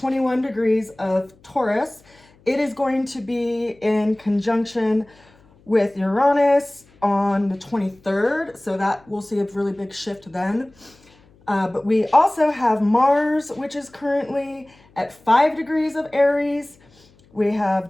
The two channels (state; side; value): noise; left; hum, 30 dB below the sound